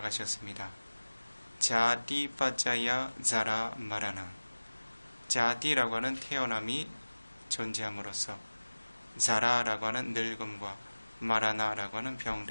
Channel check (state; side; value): inverted; both; correlation -1.00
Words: 자디 빠짜야 자라 마라나. 자디라고 하는 태어남이 존재함으로써 자라라고 하는 늙음과 마라나라고 하는